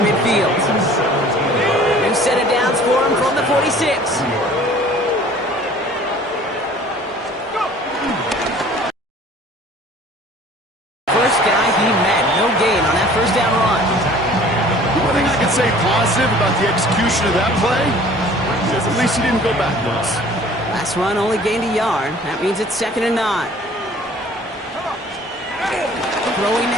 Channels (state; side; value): normal; both; correlation 0.50